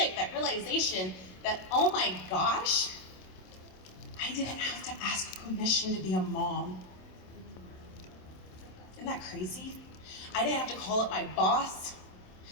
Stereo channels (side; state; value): right; late; 27 ms